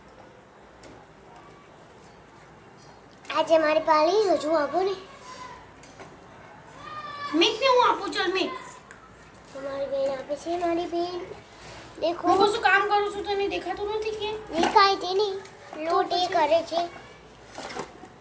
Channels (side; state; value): both; identical; correlation 1.00